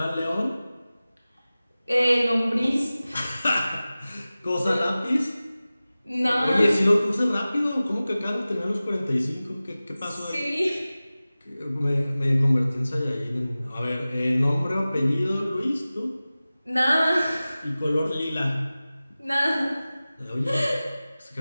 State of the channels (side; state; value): both; inverted; correlation -0.97